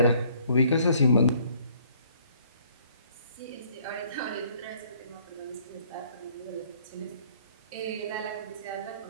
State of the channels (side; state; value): both; inverted; correlation -0.61